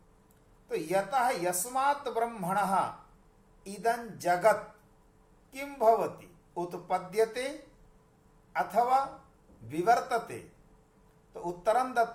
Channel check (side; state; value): both; identical; correlation 1.00